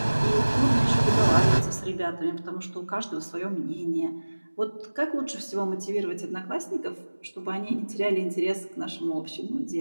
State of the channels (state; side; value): inverted; both; correlation -1.00